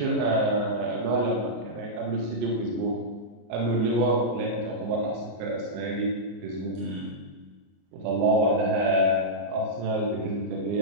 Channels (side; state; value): left; late; 34 ms